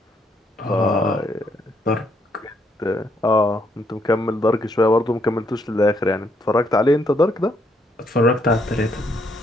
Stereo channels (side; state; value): both; normal; correlation 0.73